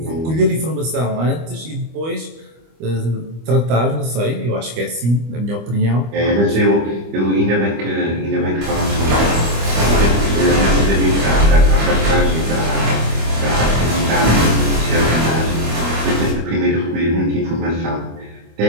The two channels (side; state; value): left; late; 25 ms